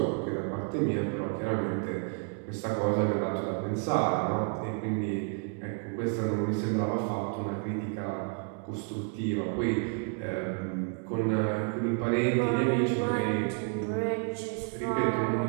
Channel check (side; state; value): left; quieter; 38.0 dB